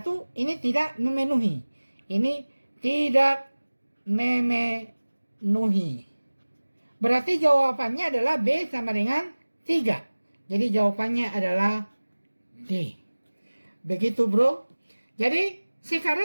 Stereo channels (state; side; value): inverted; both; correlation -1.00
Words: ini tidak memenuhi. Ini tidak memenuhi. Berarti jawabannya adalah B sama dengan 3. Jadi jawabannya adalah D. Begitu bro. Jadi